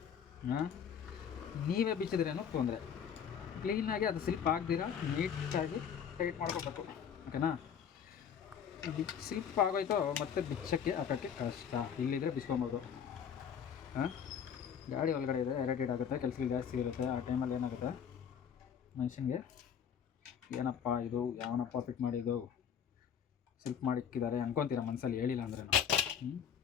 ನೀವೇ ಬಿಚ್ಚಿದ್ರೇನೋ ತೊಂದರೆ. ಕ್ಲೀನಾಗಿ ಅದು ಸ್ಲಿಪ್ ಆಗದಿರ ನೀಟಾಗಿ ಟೈಟ್ ಮಾಡ್ಕೋಬೇಕು, ಓಕೆನಾ. ಸ್ಲಿಪ್ ಆಗೋಯ್ತು ಮತ್ತೆ ಬಿಚ್ಚಕ್ಕೆ ಹಾಕೋಕ್ಕೆ ಕಷ್ಟ. ಇಲ್ಲಿದ್ರೆ ಬಿಚ್ಕೊಬೋದು. ಗಾಡಿ ಒಳಗಡೆ ಇದೆ, ಇರಿಟೇಟ್ ಆಗುತ್ತೆ, ಕೆಲಸಗಳು ಜಾಸ್ತಿ ಇರುತ್ತೆ. ಆ ಟೈಮಲ್ಲಿ ಏನಾಗುತ್ತೆ ಮನುಷ್ಯನಿಗೆ, ಏನಪ್ಪ ಇದು, ಯಾವನಪ್ಪ ಫಿಟ್ ಮಾಡಿದ್ದು, ಸ್ಲಿಪ್ ಮಾಡಿಕ್ಕಿದ್ದಾರೆ ಅನ್ಕೊತೀರ ಮನಸ್ಸಲ್ಲಿ, ಹೇಳಿಲ್ಲ ಅಂದ್ರೆ ನಾವು.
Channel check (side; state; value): right; quieter; 7.9 dB